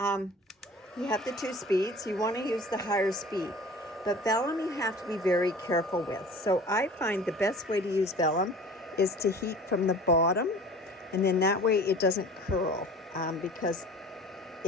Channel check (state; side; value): normal; both; correlation 0.43